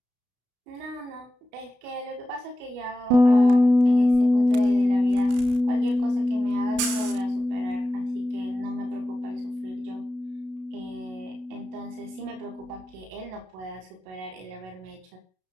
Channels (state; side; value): late; left; 32 ms